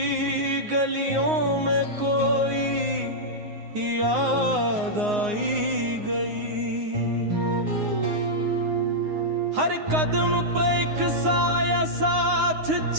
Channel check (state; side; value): late; left; 9.6 ms